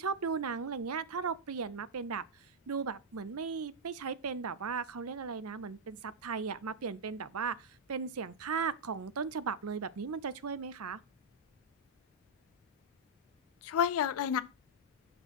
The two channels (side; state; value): both; normal; correlation -0.06